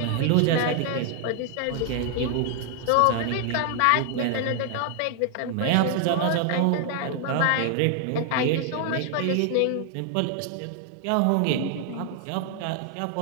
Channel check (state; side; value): different; both; correlation 0.00